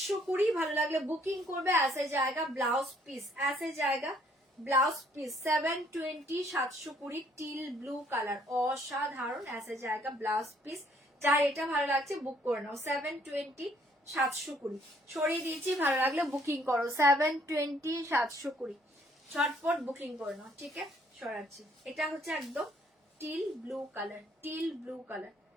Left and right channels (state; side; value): normal; both; correlation 0.65